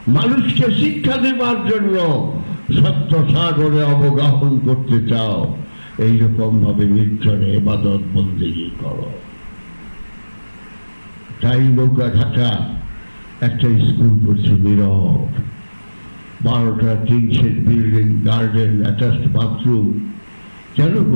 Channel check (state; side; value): inverted; both; correlation -1.00